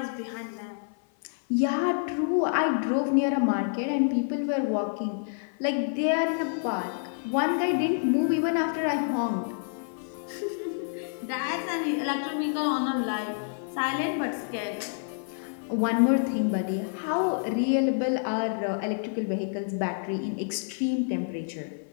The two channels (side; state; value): right; silent; 58 dB below the other